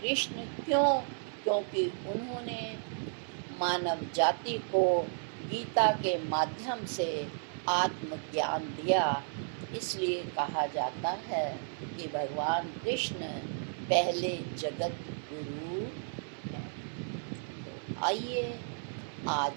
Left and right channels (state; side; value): silent; left; 56 dB below the other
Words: क्यों? क्योंकि उन्होंने मानव जाति को गीता के माध्यम से आत्मज्ञान दिया, इसलिए कहा जाता है कि भगवान कृष्ण पहले जगत गुरु। आइए